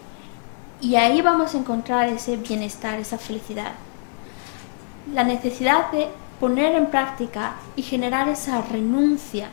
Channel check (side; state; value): right; silent; 63 dB below the other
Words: Y ahí vamos a encontrar ese bienestar, esa felicidad. La necesidad de poner en práctica y generar esa renuncia